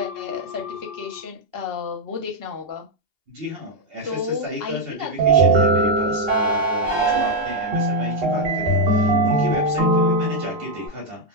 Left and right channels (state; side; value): late; left; 2.8 ms